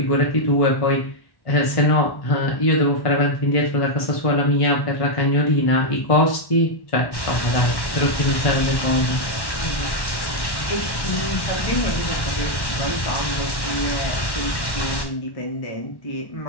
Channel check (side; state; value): right; late; 1.1 ms